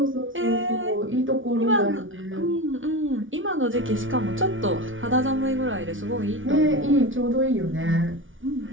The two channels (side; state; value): left; late; 0.57 ms